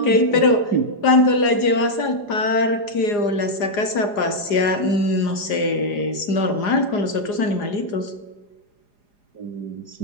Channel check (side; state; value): right; late; 4.9 ms